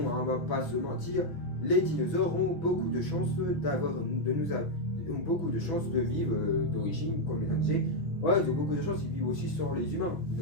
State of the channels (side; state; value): right; late; 6.1 ms